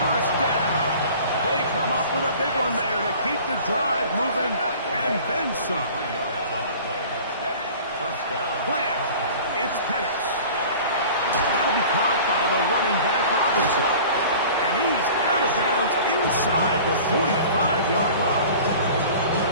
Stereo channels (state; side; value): inverted; both; correlation -0.43